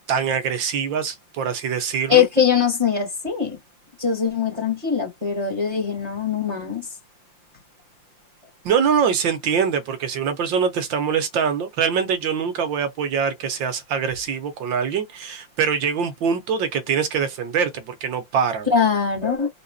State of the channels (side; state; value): left; late; 5.7 ms